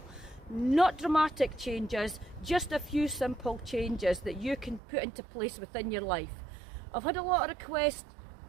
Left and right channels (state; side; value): drops out; left; at 4.8 s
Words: Not dramatic changes, just a few simple changes that you can put into place within your life. I've had a lot of requests